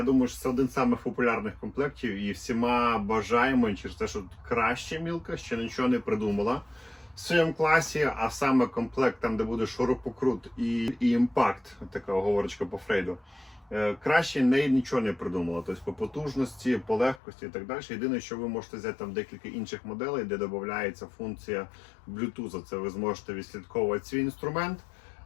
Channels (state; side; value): drops out; right; at 17.2 s